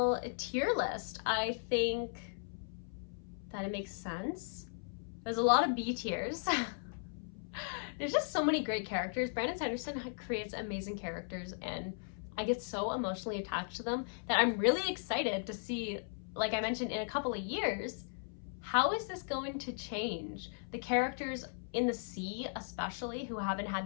tier list. I think that it makes sense. There's a lot of B tiers. There's just so many great characters. Brandon Sanderson creates amazing characters, and I get so emotionally attached to them that I'm really excited to see, like I mentioned, in a couple of years, how is this going to change? The characters in the sea, especially, who haven't had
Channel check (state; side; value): silent; right; 53 dB below the other